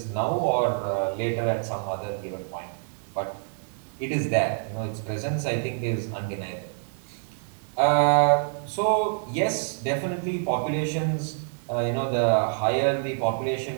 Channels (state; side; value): silent; left; 60 dB below the other